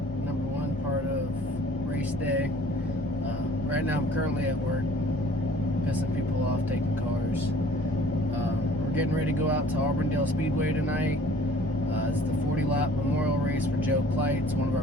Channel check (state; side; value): normal; both; correlation 0.52